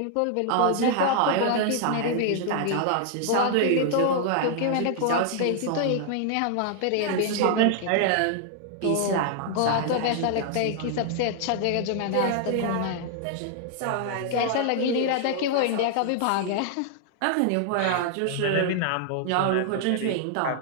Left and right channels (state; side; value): different; both; correlation 0.00